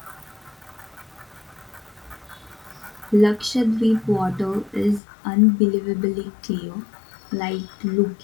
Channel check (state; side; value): drops out; right; at 5.0 s